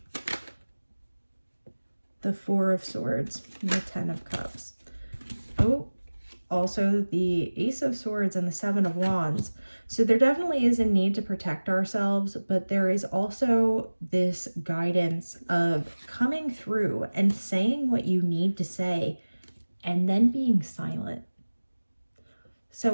the Four of Swords, and the Ten of Cups. Oh, also the Ace of Swords and the Seven of Wands. So there definitely is a need to protect ourselves, but there is also this guidance of coming through and saying what you need to say and then being silent. So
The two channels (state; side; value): inverted; both; correlation -1.00